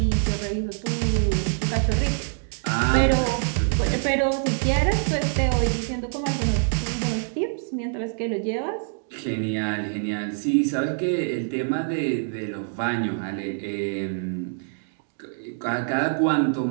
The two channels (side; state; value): left; silent; digital silence